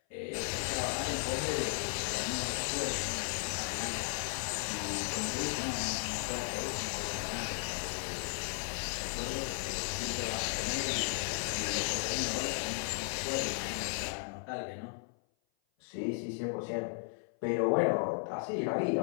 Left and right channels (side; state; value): right; silent; 54 dB below the other